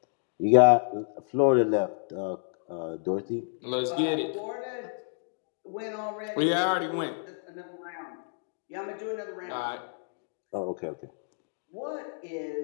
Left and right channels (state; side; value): silent; right; digital silence